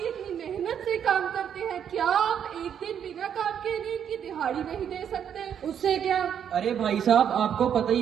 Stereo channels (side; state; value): left; quieter; 8.6 dB